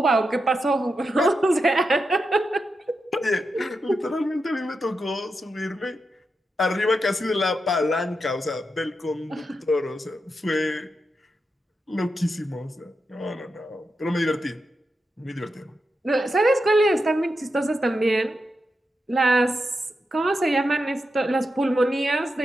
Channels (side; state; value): both; normal; correlation 0.87